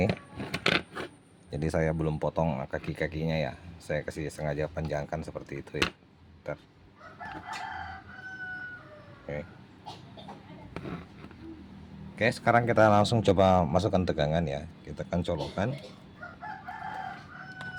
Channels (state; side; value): identical; both; correlation 1.00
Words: Jadi saya belum potong kaki-kakinya ya, saya kasih sengaja panjangkan seperti itu ya. Bentar. Oke, sekarang kita langsung coba masukkan tegangan ya. Kita akan colokan.